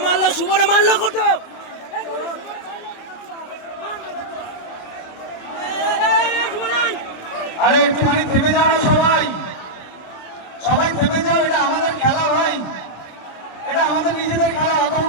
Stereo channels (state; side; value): late; right; 27 ms